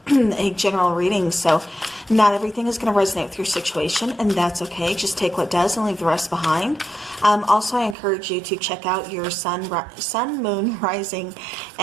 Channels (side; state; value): left; drops out; at 8.0 s